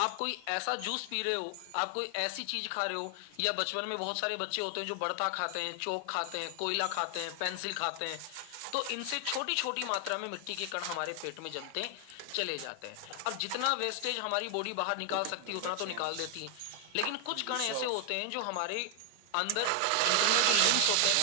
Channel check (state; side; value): different; both; correlation 0.00